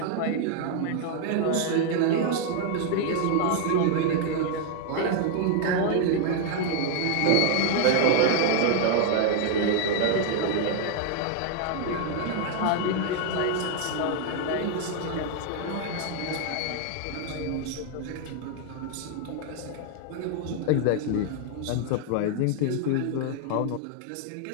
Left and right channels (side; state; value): both; different; correlation 0.00